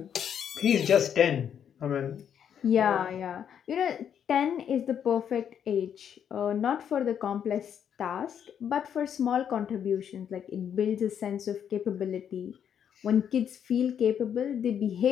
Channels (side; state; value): right; quieter; 8.6 dB